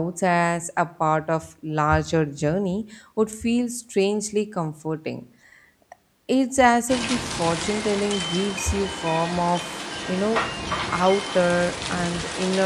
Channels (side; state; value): both; identical; correlation 1.00